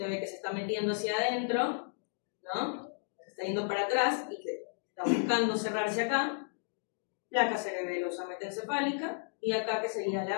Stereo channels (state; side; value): silent; right; digital silence